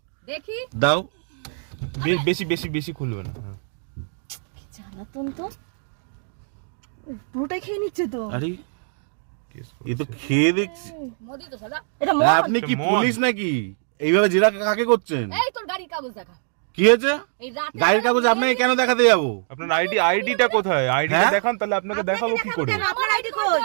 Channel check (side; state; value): left; silent; digital silence